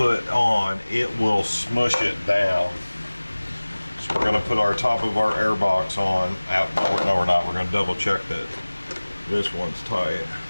on, it will smush it down. So we're going to put our top of our air box on. No, we're not. We're going to double check that this one's tight.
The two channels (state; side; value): inverted; both; correlation -1.00